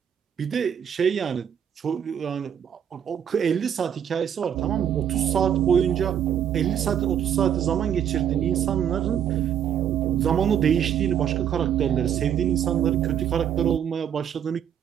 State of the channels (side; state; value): left; quieter; 9.0 dB